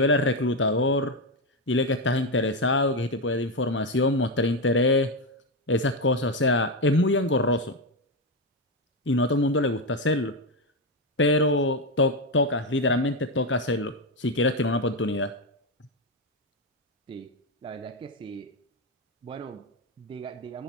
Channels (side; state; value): both; normal; correlation 0.09